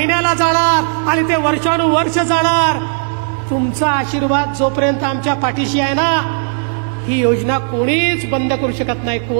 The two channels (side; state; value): left; silent; 65 dB below the other